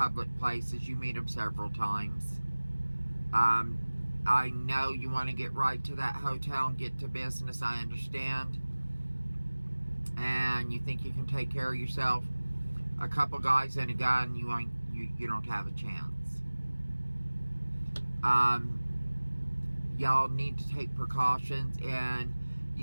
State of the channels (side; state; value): both; inverted; correlation -1.00